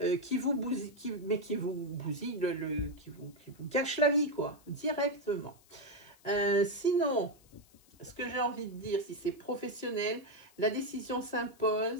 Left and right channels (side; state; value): left; noise; hiss, 28 dB below the sound